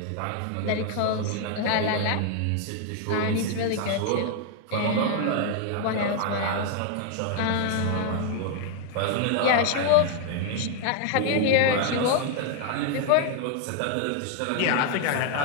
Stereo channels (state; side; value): different; both; correlation 0.00